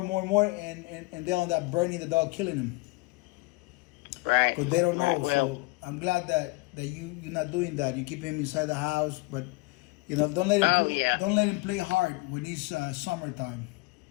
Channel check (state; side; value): quieter; right; 24.4 dB